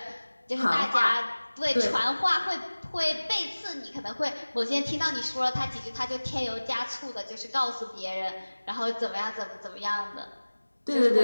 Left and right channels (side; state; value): both; inverted; correlation -1.00